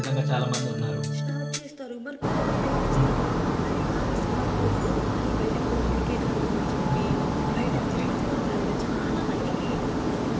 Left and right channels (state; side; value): identical; both; correlation 1.00